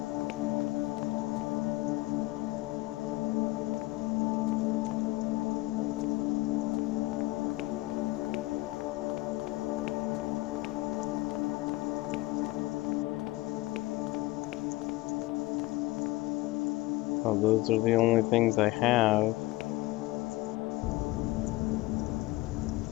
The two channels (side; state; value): right; quieter; 20.0 dB